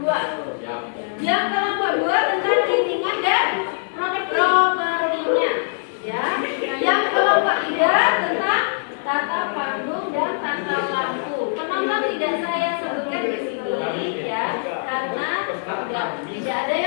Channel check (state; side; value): silent; right; digital silence